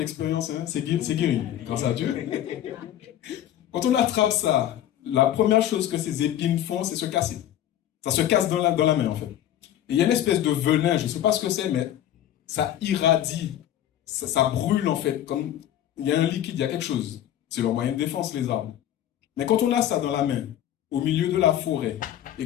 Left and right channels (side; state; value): right; quieter; 11.8 dB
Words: hein, c'est guéri, grâce à Dieu. Quand on attrape ça, la première chose que ces épines font, c'est se casser. Ça se casse dans la main, en fait. Et il y a une espèce de venin, je ne sais pas ce que c'est, mais ça irradie, ça brûle, en fait, comme il y a un liquide, il y a quelque chose. C'est leur moyen de défense, les arbres. Mais quand on a ça dans la main, au milieu de la forêt,